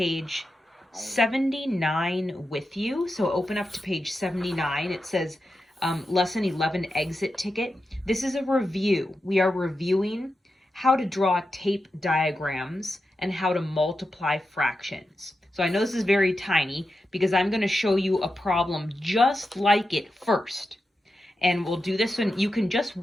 79 with you. So open up to page 79. It says Lesson 11 exit ticket. This is a review. We are reviewing how to draw tape diagrams and how to multiply fractions. So I know this is very tiny because I'm going to show you a problem just like it first. And we'll do this when you can just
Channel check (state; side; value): normal; both; correlation 0.90